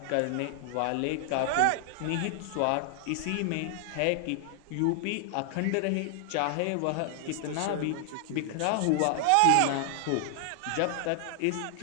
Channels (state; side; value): different; both; correlation -0.01